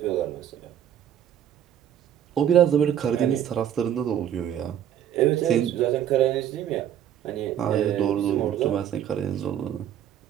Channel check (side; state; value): left; quieter; 10.2 dB